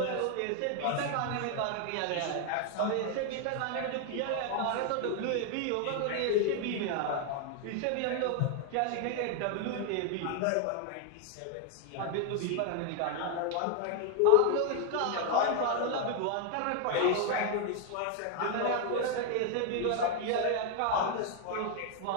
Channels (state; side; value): different; both; correlation 0.00